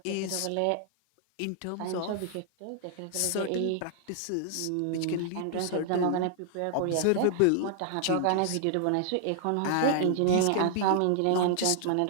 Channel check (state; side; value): different; both; correlation -0.01